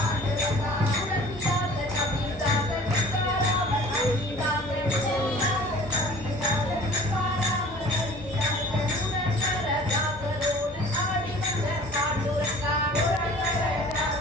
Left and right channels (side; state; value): both; normal; correlation 0.47